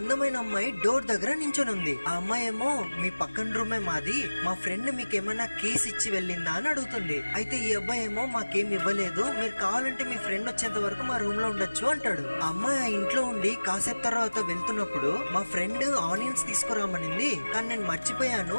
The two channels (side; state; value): both; inverted; correlation -1.00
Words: అమ్మాయి డోర్ దగ్గర నించొని ఉంది. ఆ అమ్మాయి ఏమో మీ పక్కన రూమే మాది, మా ఫ్రెండ్ మీకు ఏమైనా కేసు ఇచ్చి వెళ్ళిందా అని అడుగుతుంది. అయితే ఈ అబ్బాయి ఏమో మాకేం ఇవ్వలేదు, మీరు కావాలంటే మీ ఫ్రెండ్ వచ్చేంత వరకు మా రూమ్ లో ఉండొచ్చు అంటాడు. ఆ అమ్మాయి ఆ ఇంట్లో ఉండి కాసేపు తర్వాత వెళ్తున్నప్పుడు మా ఫ్రెండ్ ఆనియన్స్ తీసుకురామనింది, కానీ నేను మర్చిపోయాను,